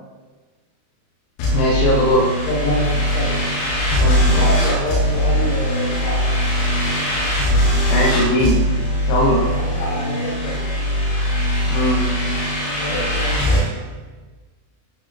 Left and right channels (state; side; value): late; right; 36 ms